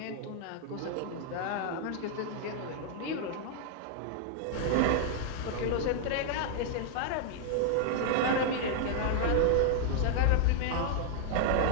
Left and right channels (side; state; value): both; different; correlation 0.00